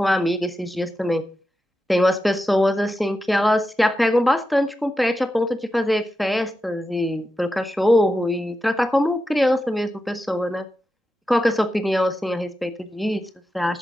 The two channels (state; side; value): normal; both; correlation 0.90